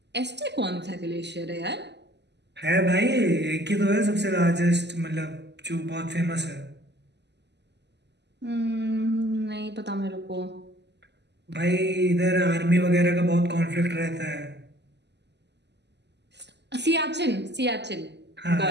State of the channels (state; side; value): late; left; 0.50 ms